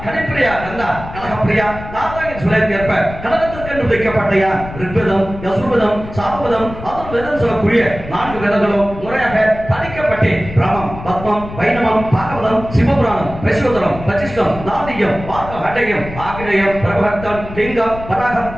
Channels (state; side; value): noise; left; rumble, 12 dB below the sound